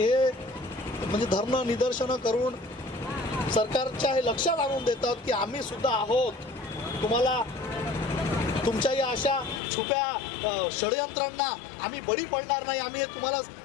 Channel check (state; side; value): drops out; right; at 9.6 s